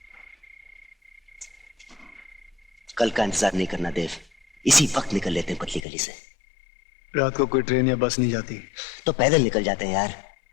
कल का इंतजार नहीं करना देव, इसी वक्त निकल लेते हैं पतली गली से। रात को कोई ट्रेन या बस नहीं जाती तो पैदल निकल जाते हैं यार।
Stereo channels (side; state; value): right; drops out; at 5.8 s